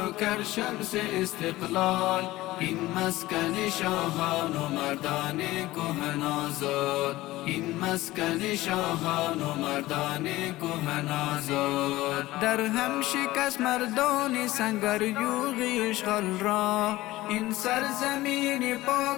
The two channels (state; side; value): quieter; right; 17.7 dB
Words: کرشمس استقلال. این مسکن شاهان و مردان کهن آزاد. این مسکن شاهان و مردان کهن آزاد. در هم شکست مردان سنگریوغی اشغال را. این سرزمین